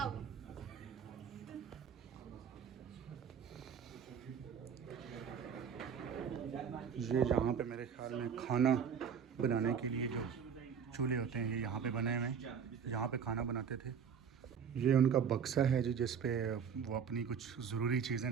ये यहाँ पे मेरे ख्याल में खाना बनाने के लिए जो चूल्हे होते हैं ये यहाँ पे बने हुए हैं, यहाँ पे खाना बनाते थे। ये उनका बक्सा है जी जिस पे वो अपनी कुछ ज़रूरी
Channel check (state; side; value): quieter; left; 7.2 dB